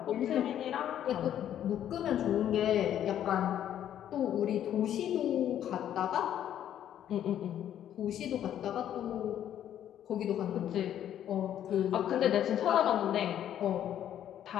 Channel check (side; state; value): right; quieter; 10.7 dB